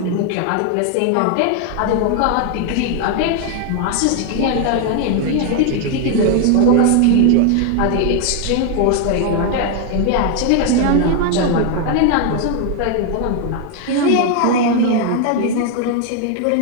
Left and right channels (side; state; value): both; different; correlation 0.00